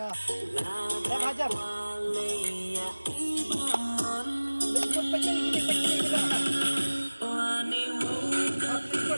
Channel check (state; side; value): inverted; both; correlation -1.00